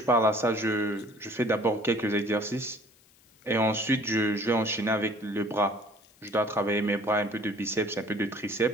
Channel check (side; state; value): left; noise; hiss, 30 dB below the sound